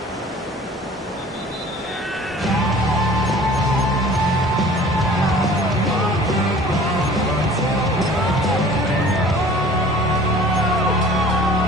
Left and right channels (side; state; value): both; normal; correlation 0.47